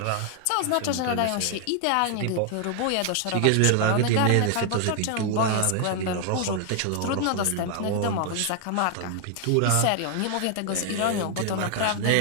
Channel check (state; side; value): different; both; correlation 0.00